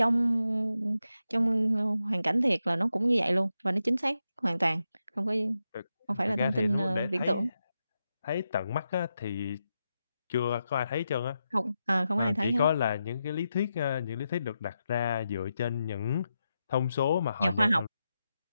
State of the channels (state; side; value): inverted; both; correlation -0.87